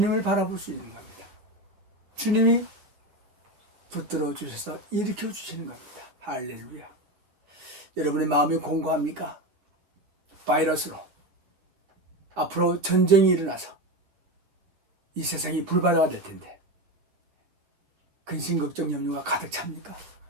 바라볼 수 있는 겁니다. 주님이 붙들어 주셔서 일으켜 주시는 겁니다. 할렐루야. 여러분의 마음이 공고합니까? 바이러스로 앞으로 전쟁이 일어나서 이 세상이 불바다가 될 텐데 근심, 걱정, 염려가 가득 찹니까?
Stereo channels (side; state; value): left; late; 10 ms